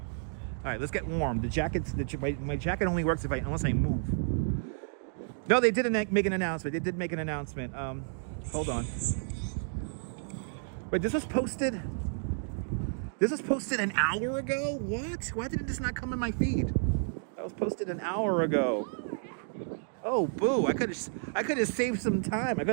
right, let's get warm. The jacket's my jacket only works unless I move. No, they didn't make an announcement. They did make an announcement. Hold on. Wait, this was posted. This was posted an hour ago? What? Why did this not come in my feed? That was posted an hour ago. Oh, boo. I could have saved some time. I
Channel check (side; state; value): left; silent; digital silence